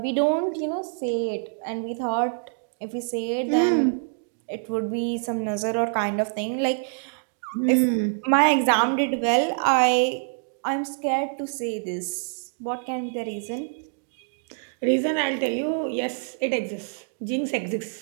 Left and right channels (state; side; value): silent; left; digital silence